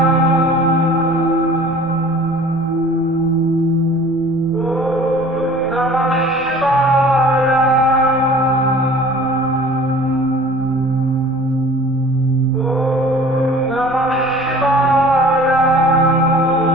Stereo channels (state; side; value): noise; right; rumble, 24 dB below the sound